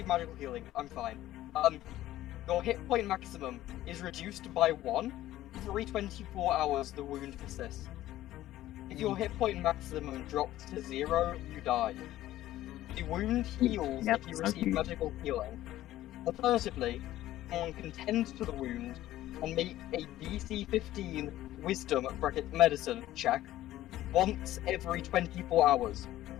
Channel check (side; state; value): right; quieter; 14.5 dB